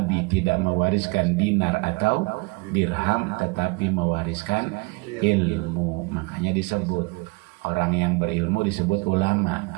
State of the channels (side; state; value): left; quieter; 27.1 dB